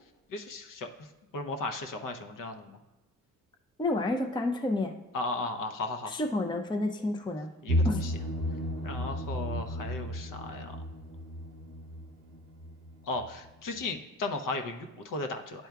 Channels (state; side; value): normal; both; correlation 0.45